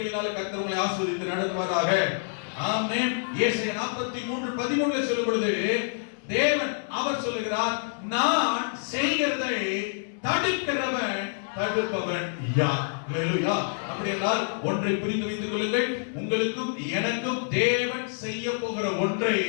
கர்த்தர் உங்களை ஆசீர்வதித்து நடத்துவாராக. ஆமென். ஏசாயா 43:13 சொல்லும் பொழுது தேவன் அவர் சொல்லுகிறார், நான் செய்கிறதை தடுக்கிறவன் தடுப்பவன் யார்? அல்லேலூயா. அப்படியென்றால் ஒன்றை புரிந்து வைத்துக் கொள்ளுங்கள், உங்களுக்கும் எனக்கும் தேவன் செய்ய போகிற ஒன்றை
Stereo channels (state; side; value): silent; right; 60 dB below the other